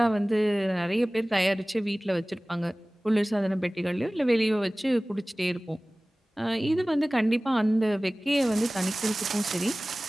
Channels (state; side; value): normal; both; correlation 0.98